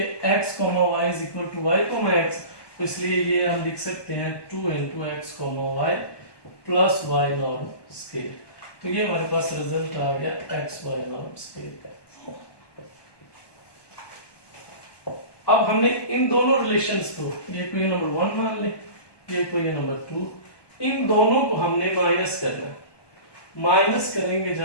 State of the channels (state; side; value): late; right; 1.2 ms